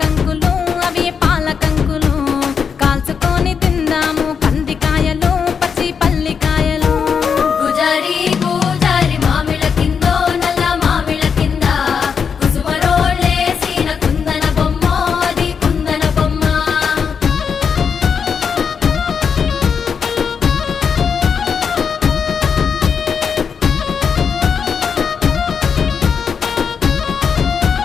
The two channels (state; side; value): quieter; right; 6.5 dB